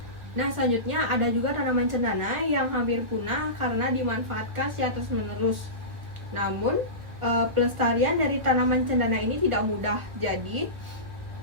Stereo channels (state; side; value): late; left; 1.8 ms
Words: Nah, selanjutnya ada juga tanaman cendana yang hampir punah karena dimanfaatkan secara terus-menerus. Namun pelestarian dari tanaman cendana ini tidak mudah, jadi